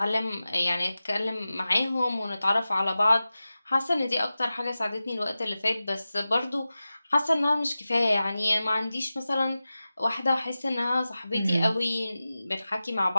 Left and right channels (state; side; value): inverted; both; correlation -0.95